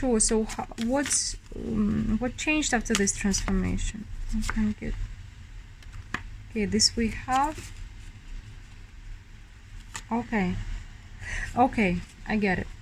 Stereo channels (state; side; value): identical; both; correlation 1.00